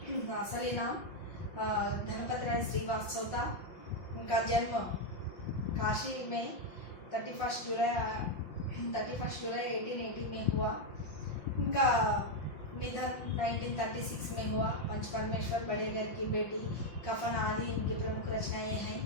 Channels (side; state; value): right; late; 5.6 ms